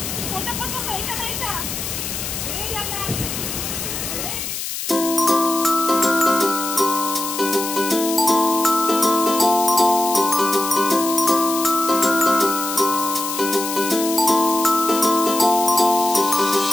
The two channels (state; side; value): noise; left; hiss, 5 dB below the sound